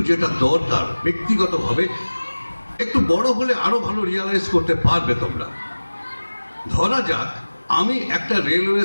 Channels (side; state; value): both; inverted; correlation -1.00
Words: যেটা দরকার ব্যক্তিগতভাবে, একটু বড় হলে আরো ভালো রিয়ালাইজ করতে পারবে তোমরা। ধরা যাক আমি একটা রেলওয়ে